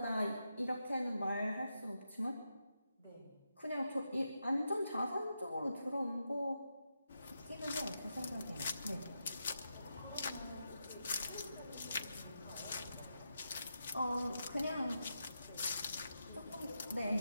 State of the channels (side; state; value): both; inverted; correlation -0.86